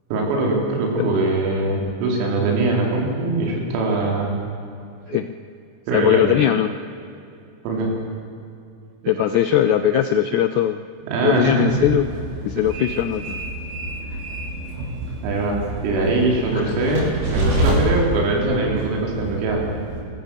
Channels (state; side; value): late; left; 27 ms